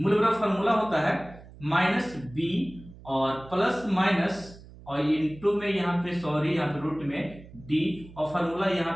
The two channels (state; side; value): noise; right; hum, 19 dB below the sound